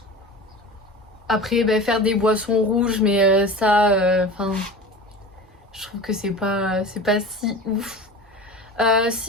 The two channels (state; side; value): normal; both; correlation 0.33